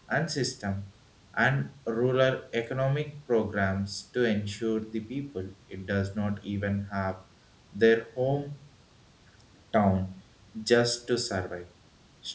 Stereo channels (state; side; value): identical; both; correlation 1.00